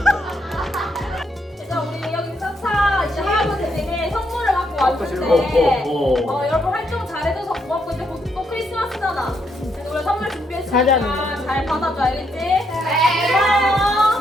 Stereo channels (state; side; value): normal; both; correlation 0.76